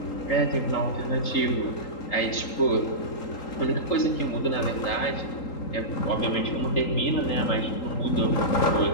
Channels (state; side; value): late; right; 3.8 ms